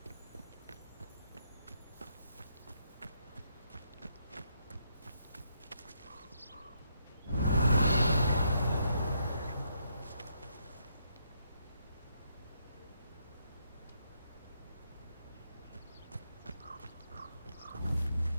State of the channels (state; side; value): inverted; both; correlation -0.77